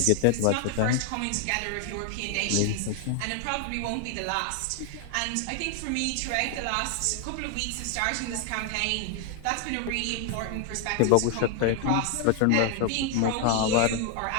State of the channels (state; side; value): different; both; correlation 0.00